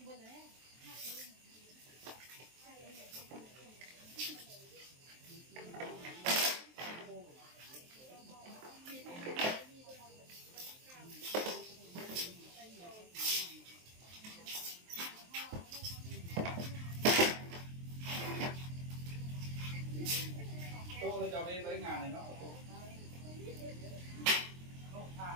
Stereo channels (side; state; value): left; late; 23 ms